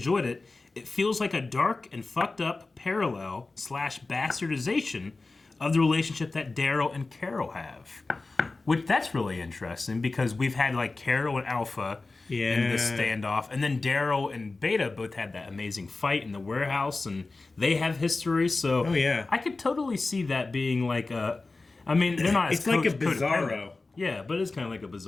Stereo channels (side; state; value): right; quieter; 3.5 dB